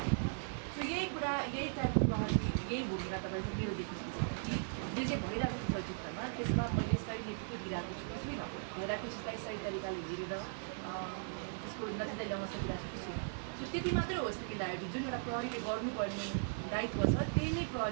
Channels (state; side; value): silent; left; digital silence